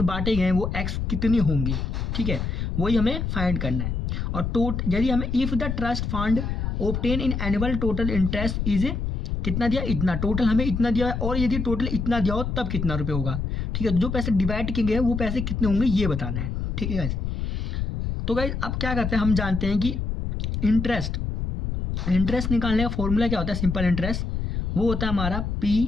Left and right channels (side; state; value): left; noise; rumble, 2 dB below the sound